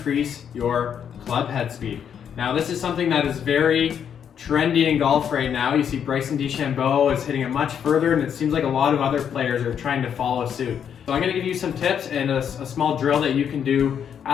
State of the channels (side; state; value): right; quieter; 8.2 dB